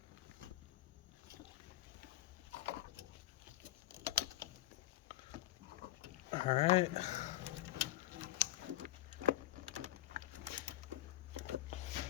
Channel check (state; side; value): quieter; right; 15.1 dB